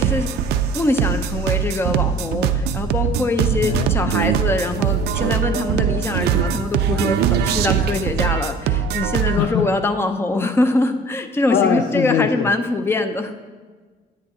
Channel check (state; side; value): normal; both; correlation 0.47